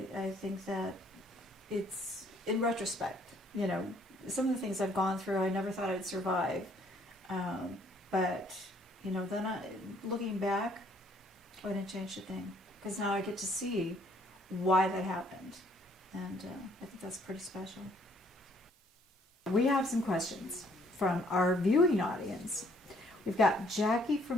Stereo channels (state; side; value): normal; both; correlation 0.64